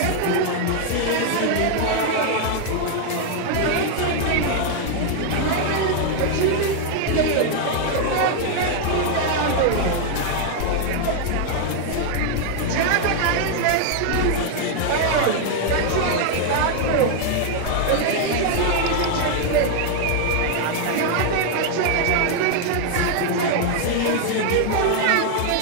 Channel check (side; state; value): both; different; correlation 0.00